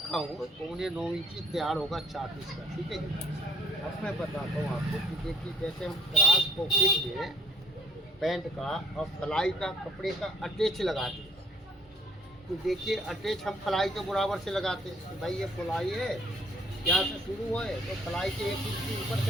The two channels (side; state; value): both; normal; correlation 0.61